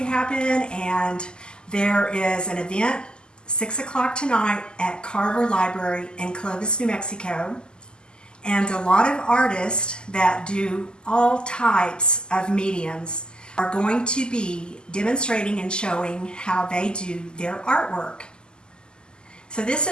to happen, and there is an event 6 o'clock tonight at Carver Library in Clovis, New Mexico. And a lot of artists that do all types of mediums are going to be demonstrating and showing how they do their artwork. So this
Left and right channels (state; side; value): late; right; 0.047 ms